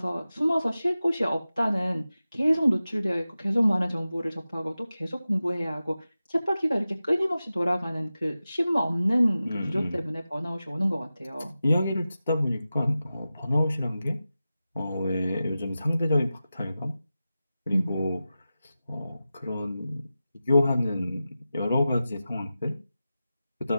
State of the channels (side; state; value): both; inverted; correlation -0.94